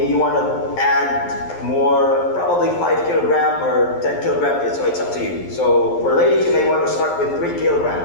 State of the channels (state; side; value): late; right; 11 ms